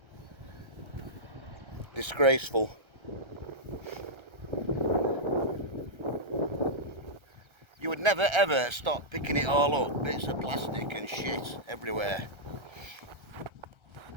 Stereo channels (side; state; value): left; late; 1.3 ms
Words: Disgraceful. You would never ever stop picking it all up. Bits of plastic and shit everywhere.